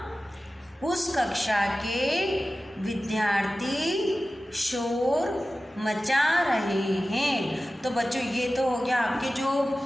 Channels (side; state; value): both; normal; correlation 0.95